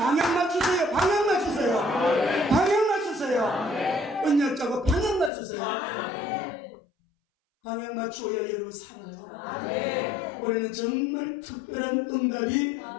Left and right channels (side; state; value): right; drops out; at 5.3 s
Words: 맞추세요. 언약자고 방향 맞추세요. 방향 맞추어야 여러분 살아요. 올해는 정말 특별한 응답이